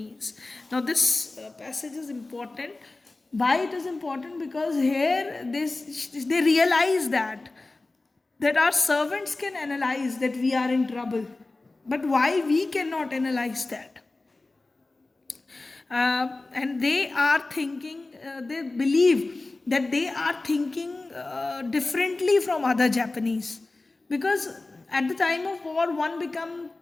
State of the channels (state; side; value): quieter; right; 3.2 dB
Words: Now this passage is important Why it is important? Because here they realize that our servants can analyze that we are in trouble, but why we cannot analyze that? And they are thinking, they believe that they are thinking differently from other Japanese, because at the time of war one become